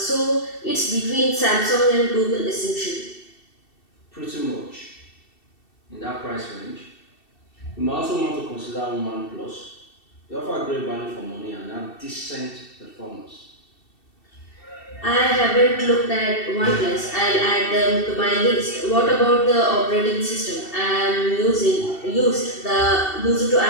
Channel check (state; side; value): late; right; 2.7 ms